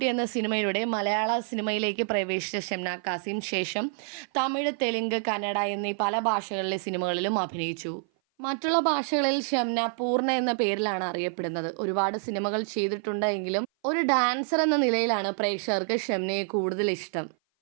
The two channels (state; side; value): silent; left; 56 dB below the other